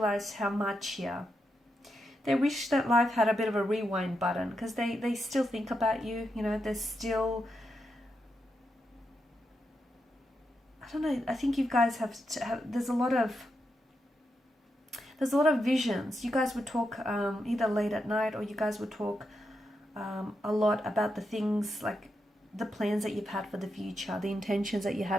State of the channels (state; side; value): normal; both; correlation 0.85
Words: how much here. They wish that life had a bit of a rewind button, because they still think about you. You know, they're still... I don't know. I think you guys have there's a lot of visions. You guys would talk either late at night, or you guys would talk a lot about the things, like the plans that you've had for the future, the intentions that you